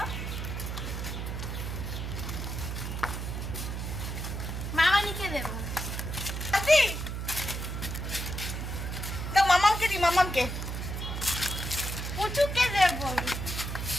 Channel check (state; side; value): noise; right; hum, 4 dB below the sound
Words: মামানিকে দেবো আদি দাও মামাকে দি মামাকে পুচুকে দেবো